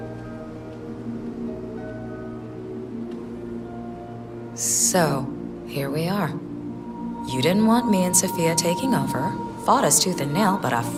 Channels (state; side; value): identical; both; correlation 1.00